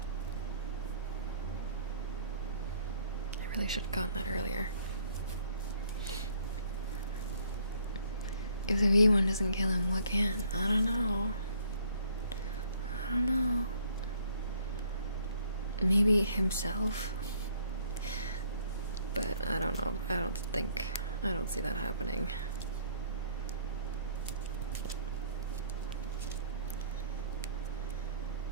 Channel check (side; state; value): both; inverted; correlation -0.62